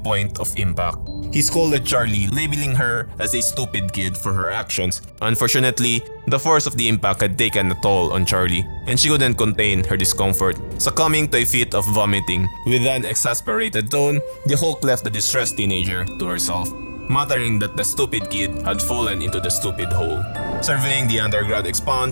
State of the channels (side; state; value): both; inverted; correlation -1.00